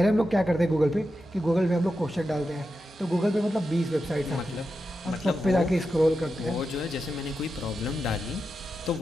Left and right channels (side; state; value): both; normal; correlation 0.89